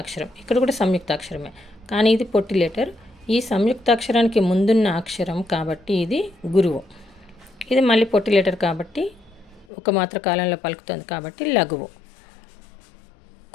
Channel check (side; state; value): right; drops out; at 9.7 s